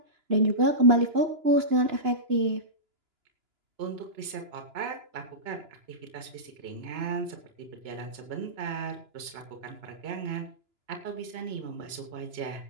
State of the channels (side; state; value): left; late; 2.9 ms